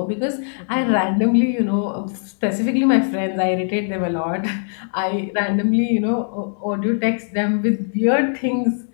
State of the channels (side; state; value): right; silent; digital silence